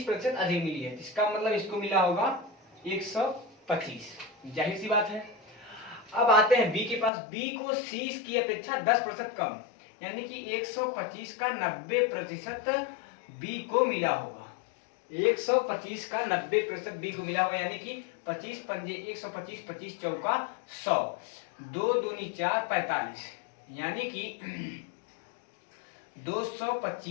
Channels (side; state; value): right; drops out; at 7.1 s